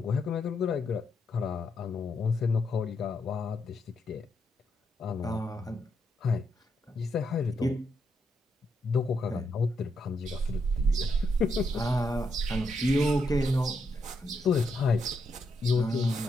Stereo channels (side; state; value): both; normal; correlation 0.80